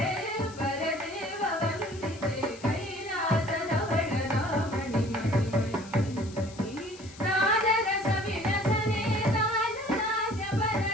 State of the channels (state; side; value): noise; left; hiss, 19 dB below the sound